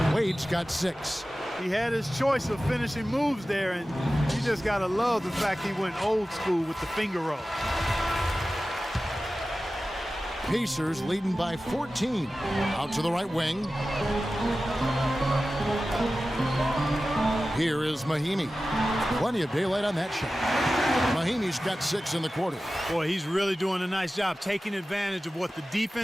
Wade's got 6. He had his choice of finishing moves there, and you just got to love the fact he went old school with the finger roll. Pacers leading by 14. Out to the right wing. Here is Mahimi. Plenty of daylight on that shot. Mahimi's got 6 in the quarter. Boy, he's really doing a nice job taking advantage of what the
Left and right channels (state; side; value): normal; both; correlation 0.95